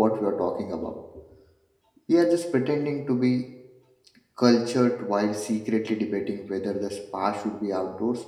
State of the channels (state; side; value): identical; both; correlation 1.00